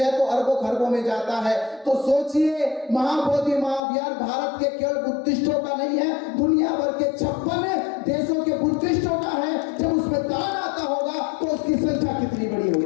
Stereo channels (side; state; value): right; drops out; at 3.8 s